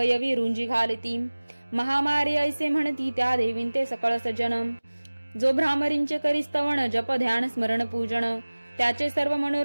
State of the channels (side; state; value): both; inverted; correlation -1.00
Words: रुंजी घालती. महामारी ऐसे म्हणती त्या देवींते सकळ सज्जन. जो भ्रामरींचे करी स्तवन जप ध्यान स्मरण पूजन. त्याचे सर्व